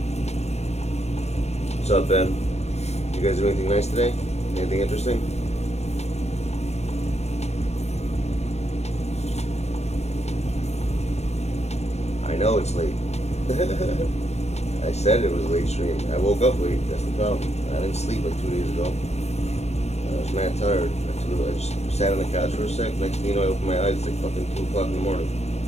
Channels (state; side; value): late; right; 0.31 ms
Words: What's up, Ben? You guys do anything nice today? Anything interesting? I know it's late. I said it was a late stream. I woke up late. That's the problem. I didn't sleep like 2 days ago. I was mad tired. I just sat on the couch for a sec. Next thing you know, I opened my eyes. It's like fucking 2 o'clock in the morning.